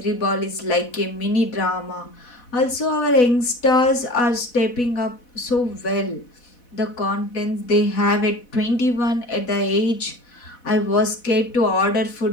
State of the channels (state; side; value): late; right; 4.1 ms